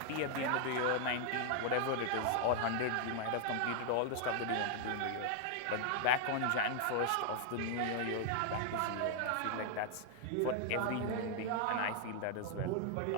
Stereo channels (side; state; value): both; different; correlation 0.00